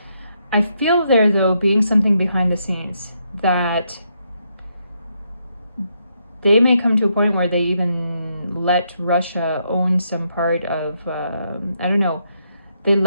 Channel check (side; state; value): both; inverted; correlation -0.78